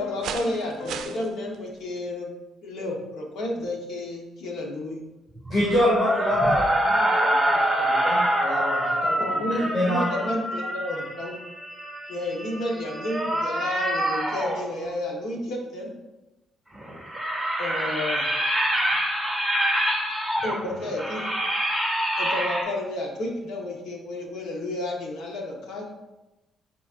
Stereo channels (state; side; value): normal; both; correlation 0.78